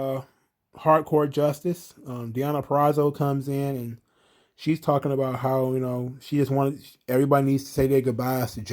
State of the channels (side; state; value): both; identical; correlation 1.00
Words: hardcore justice. Deanna Perrazzo comes in and she's talking about how, she just wanted, everybody needs to say their goodbyes to